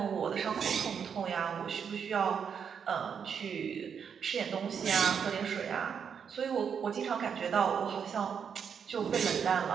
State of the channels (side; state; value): left; quieter; 7.1 dB